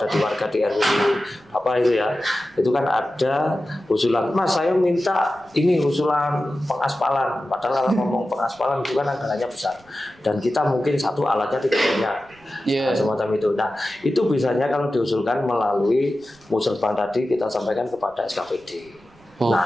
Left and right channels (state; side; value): noise; right; rumble, 29 dB below the sound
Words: di warga di RW apa itu ya, itu kan ada usulan, Mas saya minta ini usulan pengaspalan. Padahal kalau ngomong pengaspalan itu kan anggarannya besar dan kita mungkin satu alatnya tidak punya. Semacam itu. Nah itu biasanya kalau diusulkan melalui Musrebang tadi kita sampaikan kepada SKPD.